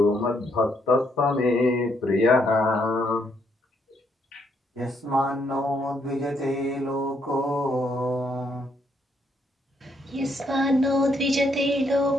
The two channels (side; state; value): both; normal; correlation 0.73